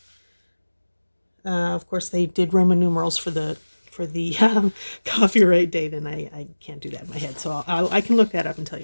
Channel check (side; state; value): both; inverted; correlation -1.00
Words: Of course, they did Roman numerals for the copyright date, and I can't do that in my head, so I can look that up and tell you